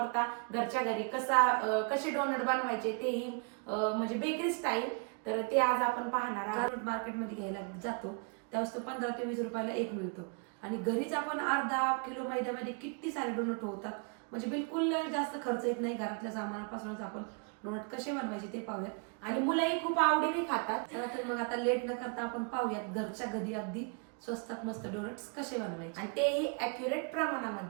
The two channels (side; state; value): left; quieter; 36.9 dB